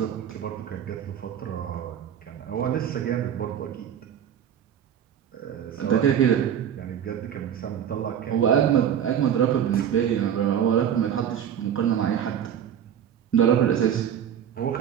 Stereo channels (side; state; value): left; quieter; 9.2 dB